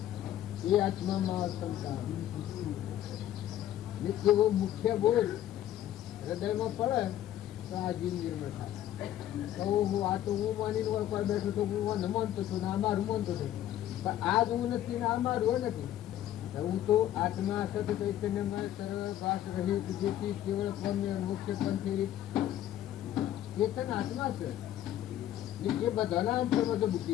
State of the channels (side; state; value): right; quieter; 12.2 dB